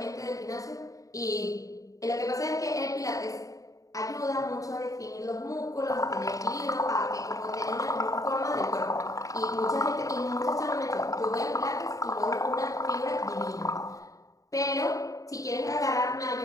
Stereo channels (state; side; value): late; right; 0.16 ms